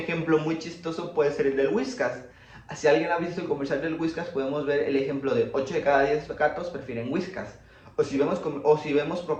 muy chistoso puede ser el del Whiskas. Si alguien ha visto el comercial del Whiskas, podemos ver el ejemplo de 8 de cada 10 gatos prefieren Whiskas. O si vemos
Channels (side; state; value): both; identical; correlation 1.00